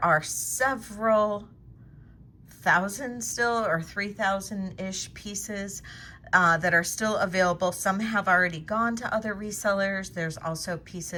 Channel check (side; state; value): both; identical; correlation 1.00